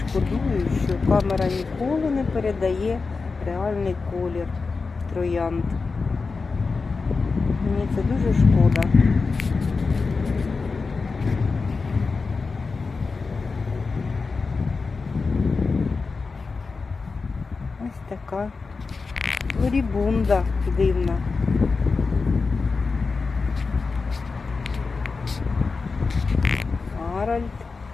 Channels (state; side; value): quieter; right; 4.4 dB